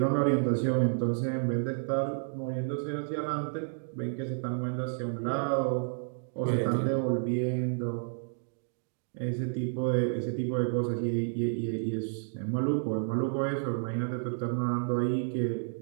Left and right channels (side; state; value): left; silent; digital silence